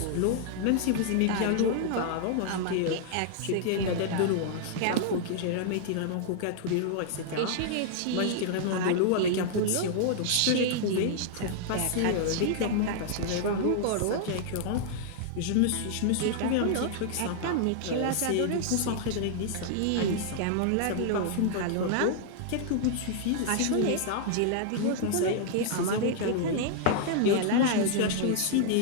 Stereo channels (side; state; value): both; different; correlation -0.01